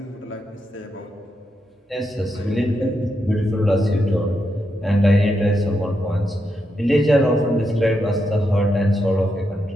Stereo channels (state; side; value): normal; both; correlation 0.83